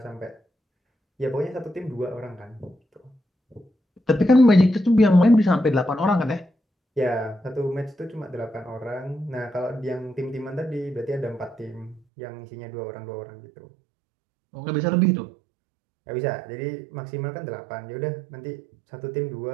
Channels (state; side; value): drops out; left; at 12.0 s